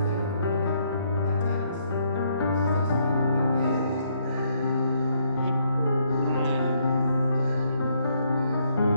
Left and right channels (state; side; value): inverted; both; correlation -0.71